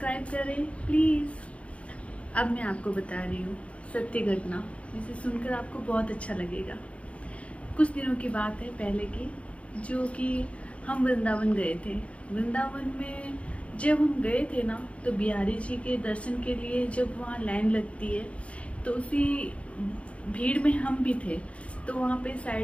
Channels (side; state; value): right; late; 0.063 ms